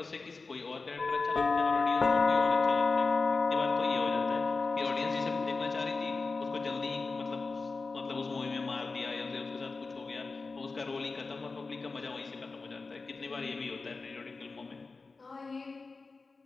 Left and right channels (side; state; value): right; quieter; 4.0 dB